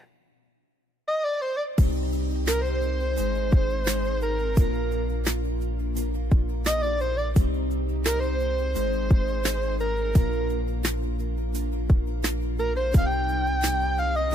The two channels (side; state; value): both; normal; correlation 0.78